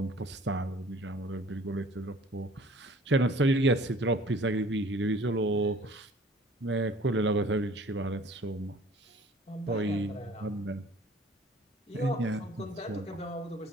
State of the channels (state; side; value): normal; both; correlation 0.50